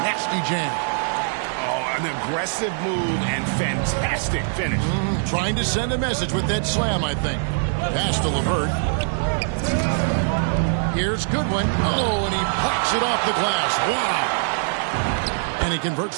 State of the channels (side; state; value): left; silent; digital silence